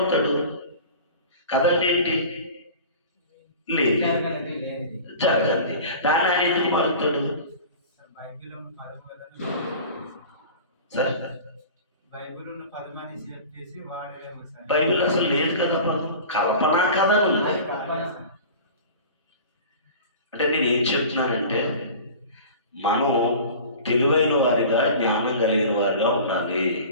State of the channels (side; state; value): both; inverted; correlation -0.38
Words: కథ అంటే ఏంటి? లేదు, జరగండి. దాని ఆయన ఎందుకు మారుతాడు? సార్ బైబిల్ అసలు లేదు కదా పదం, కల్పనా కథ ఉంది. అంటే నేను ఏం చెప్తున్నానంటే మనం తెలివైన వారిగా, జ్ఞానం కలిగిన వారిగా ఉండాలి.